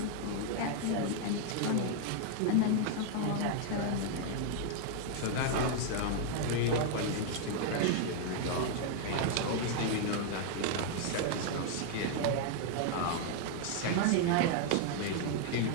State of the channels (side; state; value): both; different; correlation 0.00